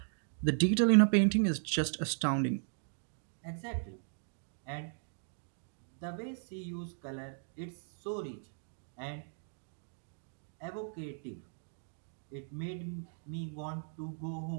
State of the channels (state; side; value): silent; left; digital silence